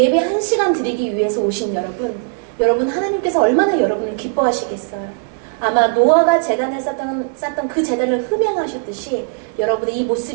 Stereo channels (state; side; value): silent; left; 65 dB below the other